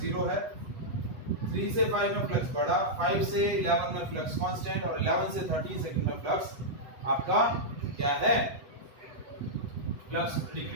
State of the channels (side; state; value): left; late; 8.1 ms